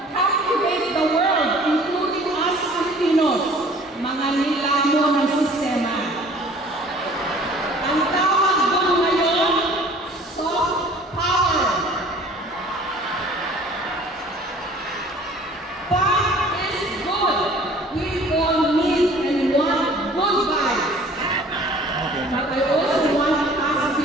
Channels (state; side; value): normal; both; correlation 0.50